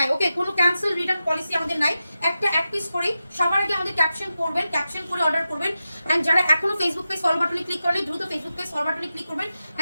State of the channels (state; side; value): inverted; both; correlation -0.91